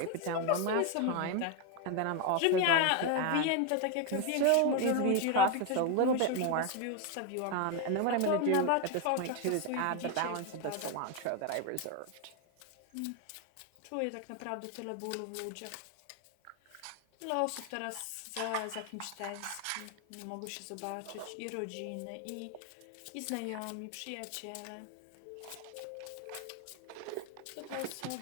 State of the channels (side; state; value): both; different; correlation 0.01